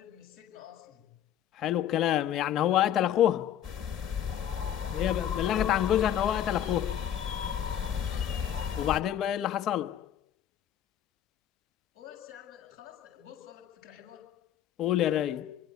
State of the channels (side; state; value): right; quieter; 10.4 dB